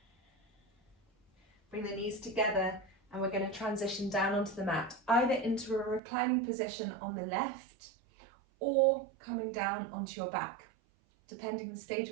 Bring the knees together, and we're going to transition down onto the mat, either into a reclining position on the left or coming down onto your back. Depending on the stage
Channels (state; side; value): drops out; left; at 6.0 s